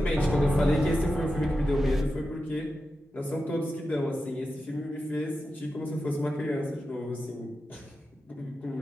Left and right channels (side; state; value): both; normal; correlation 0.91